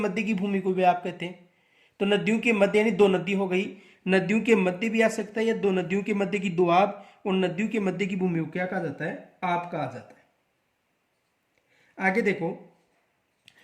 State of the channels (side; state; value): both; identical; correlation 1.00